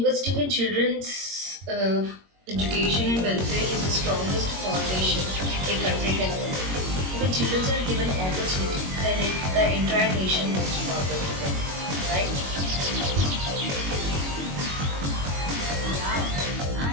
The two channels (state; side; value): late; left; 21 ms